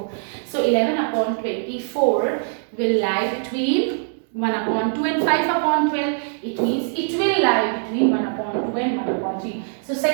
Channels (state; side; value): silent; left; digital silence